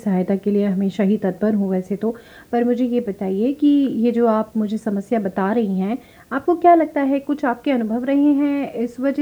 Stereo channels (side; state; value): both; identical; correlation 1.00